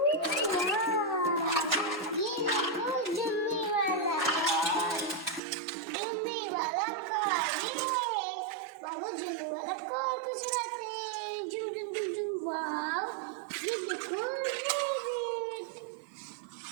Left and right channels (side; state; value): left; drops out; at 5.4 s